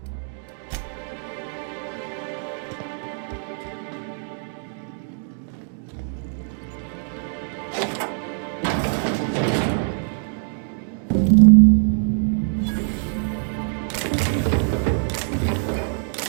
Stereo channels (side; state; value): left; silent; 59 dB below the other